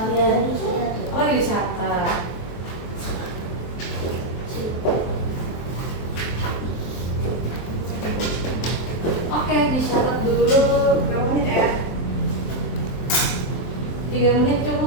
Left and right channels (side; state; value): right; late; 23 ms